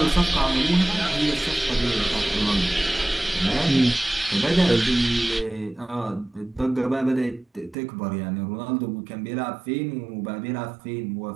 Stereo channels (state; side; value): drops out; left; at 7.8 s